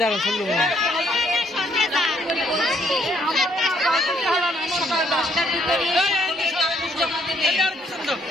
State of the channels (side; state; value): both; normal; correlation 0.68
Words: দাঁড়ান শুনলো না।